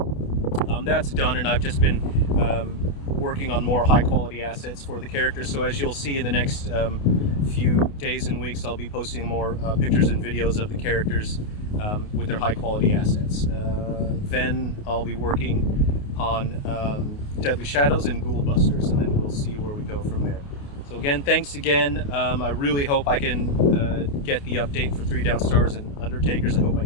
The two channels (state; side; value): late; right; 28 ms